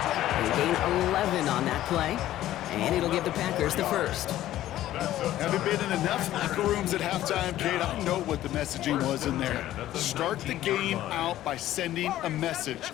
They gain 11 on that play, and it'll give the Packers the first. Having been in enough locker rooms at halftime, Kate, I know what the messaging was in there. Start the game out by sending a message.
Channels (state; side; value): quieter; right; 13.7 dB